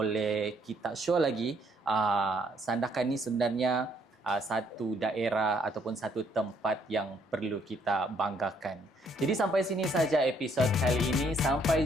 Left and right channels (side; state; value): both; normal; correlation 0.67